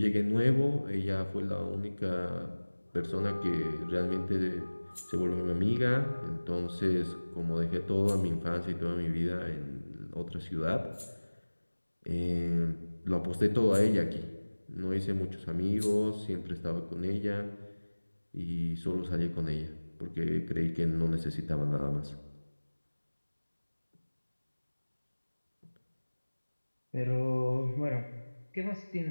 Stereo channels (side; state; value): both; inverted; correlation -1.00